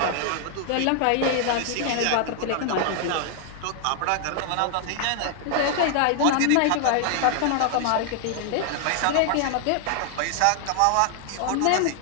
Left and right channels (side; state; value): both; different; correlation 0.00